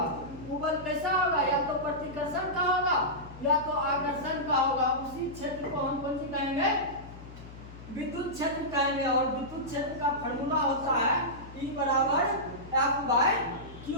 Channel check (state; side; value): noise; left; hum, 16 dB below the sound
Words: वो बल कैसा होगा, या तो प्रतिकर्षण का होगा या तो आकर्षण का होगा। उसी क्षेत्र को हम कौन सी कहेंगे, विद्युत क्षेत्र कहेंगे। और विद्युत क्षेत्र का फॉर्मूला होता है E = F/Q